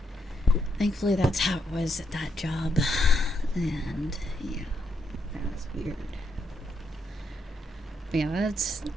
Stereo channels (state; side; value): normal; both; correlation 0.78